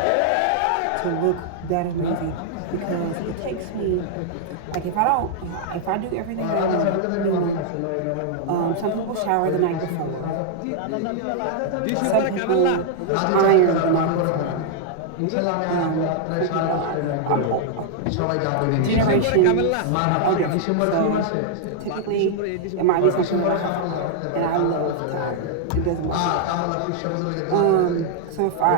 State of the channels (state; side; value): different; both; correlation -0.01